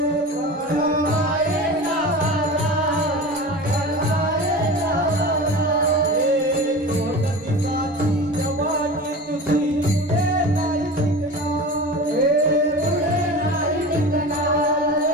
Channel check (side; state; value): both; normal; correlation 0.32